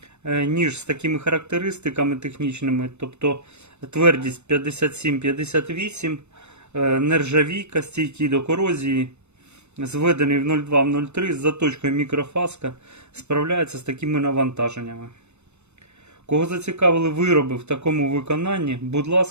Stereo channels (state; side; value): late; left; 0.82 ms